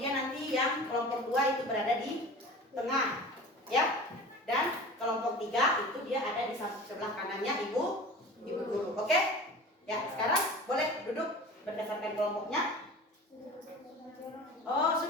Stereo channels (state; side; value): normal; both; correlation 0.38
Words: nanti yang kelompok 2 itu berada di tengah ya. Dan kelompok 3 itu dia ada di sebelah kanannya ibu guru. Oke? Ya, sekarang boleh duduk berdasarkan kelompoknya. Oh,